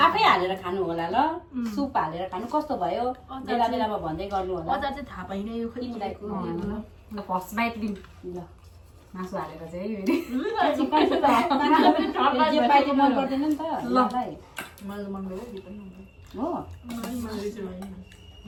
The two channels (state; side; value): identical; both; correlation 1.00